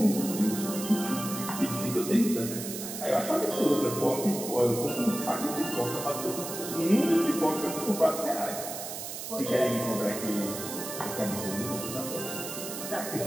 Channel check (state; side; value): noise; right; hiss, 7 dB below the sound